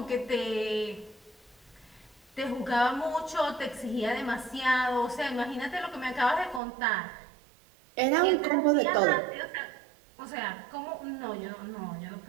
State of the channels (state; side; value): drops out; left; at 6.6 s